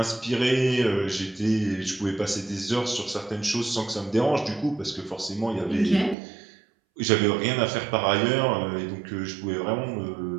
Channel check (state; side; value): drops out; left; at 6.2 s